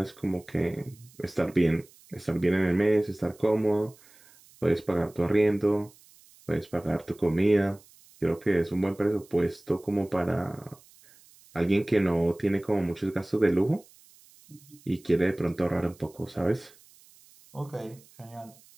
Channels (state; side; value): noise; right; hiss, 27 dB below the sound